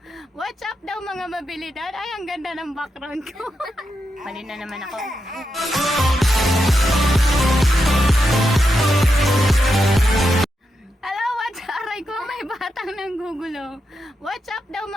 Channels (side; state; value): both; normal; correlation 0.86